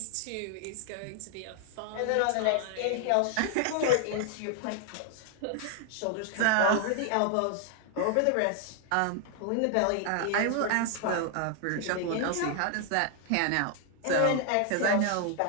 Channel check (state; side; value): different; both; correlation 0.00